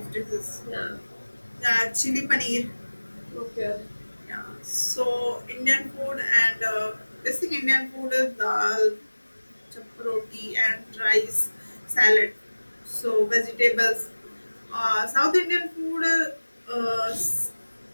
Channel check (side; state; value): both; inverted; correlation -1.00